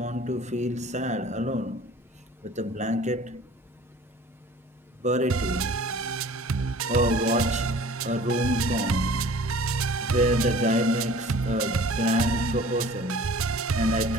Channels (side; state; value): both; normal; correlation 0.47